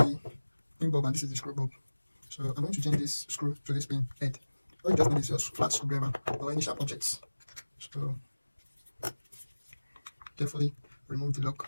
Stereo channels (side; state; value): both; inverted; correlation -1.00